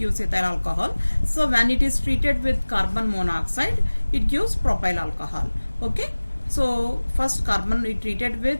ethyl alcohol. So when it is treated with carbon monoxide, it gives propyl alcohol. Okay. So first carbon we treated with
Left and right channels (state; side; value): inverted; both; correlation -1.00